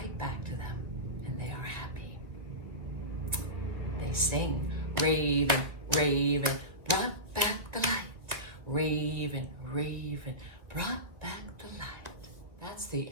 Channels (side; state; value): left; late; 2.3 ms